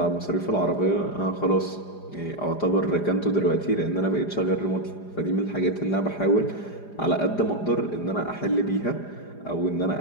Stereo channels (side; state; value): right; late; 4.9 ms